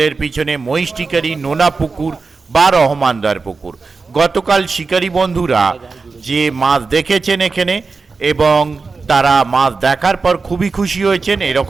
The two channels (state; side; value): quieter; left; 4.3 dB